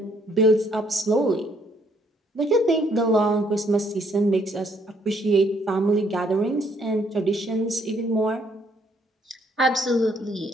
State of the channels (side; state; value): both; normal; correlation 0.68